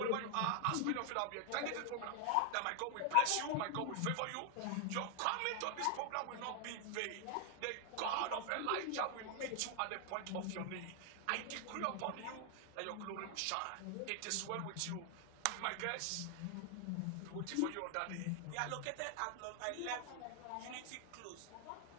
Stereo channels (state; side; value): different; both; correlation 0.00